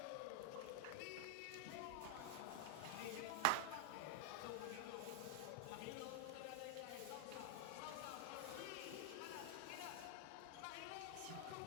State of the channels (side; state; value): both; different; correlation 0.00